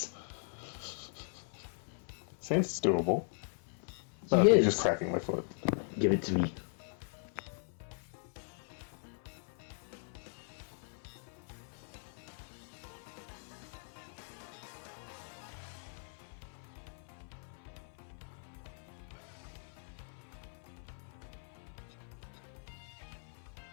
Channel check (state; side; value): silent; right; 52 dB below the other